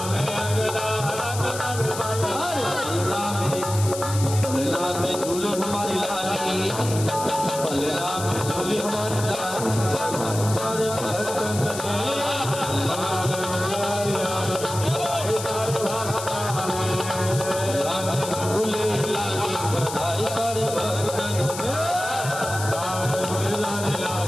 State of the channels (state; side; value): noise; left; hiss, 9 dB below the sound